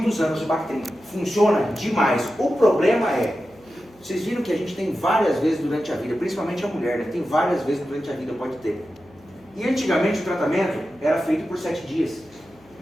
anos o Bactrim. Funciona demais. O problema vocês viram que a gente tem várias vezes durante a vida, principalmente a mulher, né? Tem várias vezes durante a vida, pode ter. E antigamente o tratamento era feito por 7 dias.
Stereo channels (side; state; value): left; noise; hum, 29 dB below the sound